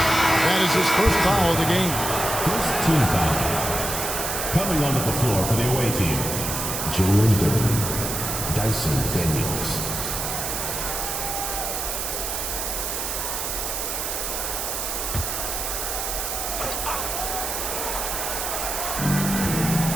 That is his first foul of the game. First team foul. Coming onto the floor for the away team, Jalen Duren, Dyson Daniels.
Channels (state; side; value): noise; right; hiss, 2 dB below the sound